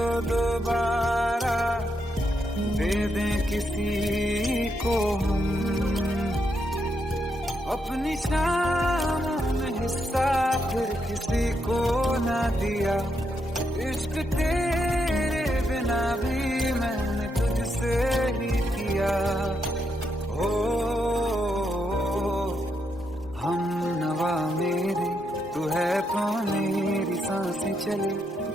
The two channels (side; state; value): both; normal; correlation 0.80